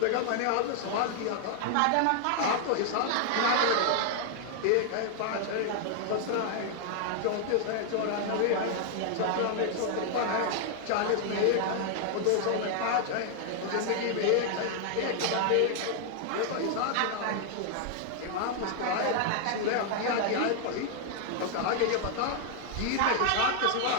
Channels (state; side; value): different; both; correlation 0.00